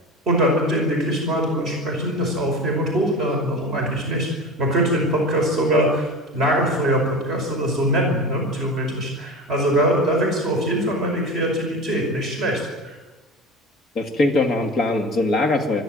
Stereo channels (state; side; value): normal; both; correlation 0.31